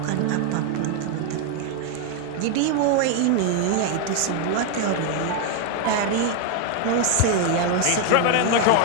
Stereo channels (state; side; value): different; both; correlation 0.01